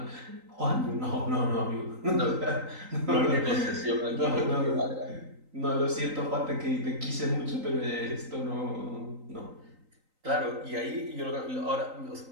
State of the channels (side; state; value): left; late; 3.9 ms